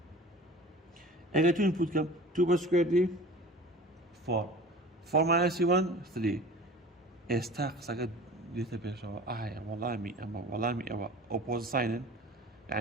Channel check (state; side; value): normal; both; correlation 0.41